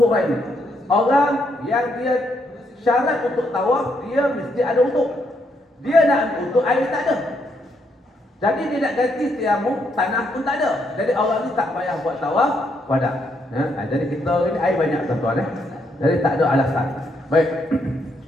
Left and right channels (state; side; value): normal; both; correlation 0.75